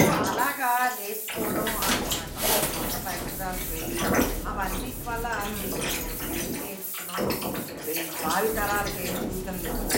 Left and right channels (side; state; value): both; identical; correlation 1.00